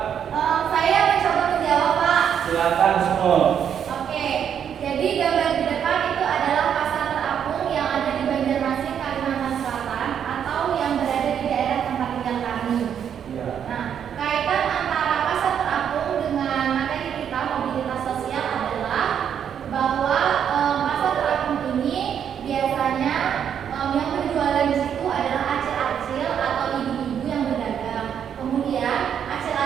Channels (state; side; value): quieter; left; 8.5 dB